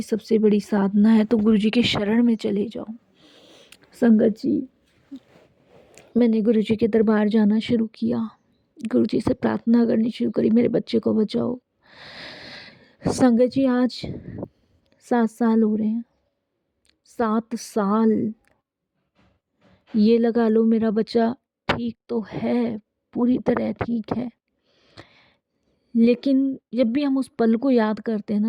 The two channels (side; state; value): both; identical; correlation 1.00